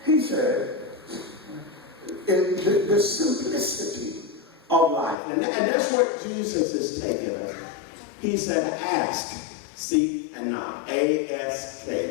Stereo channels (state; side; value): drops out; right; at 5.2 s